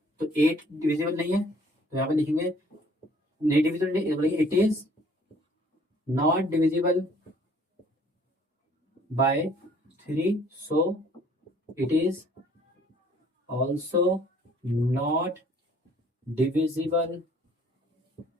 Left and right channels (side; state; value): both; normal; correlation 0.57